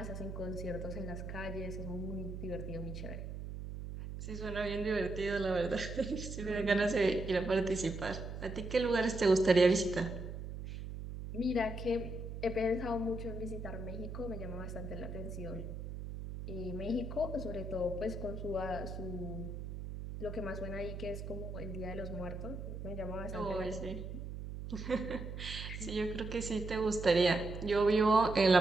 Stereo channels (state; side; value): noise; right; hum, 7 dB below the sound